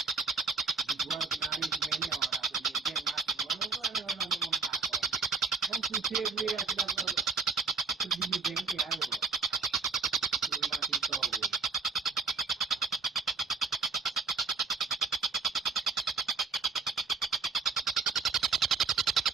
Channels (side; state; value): left; quieter; 5.1 dB